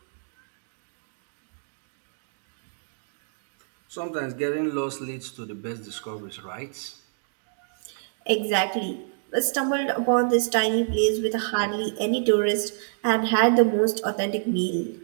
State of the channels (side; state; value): left; silent; digital silence